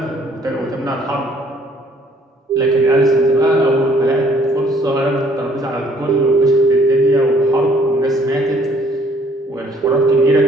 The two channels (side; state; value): both; normal; correlation 0.61